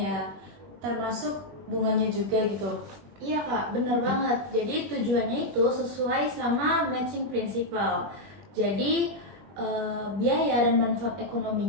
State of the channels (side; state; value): left; late; 21 ms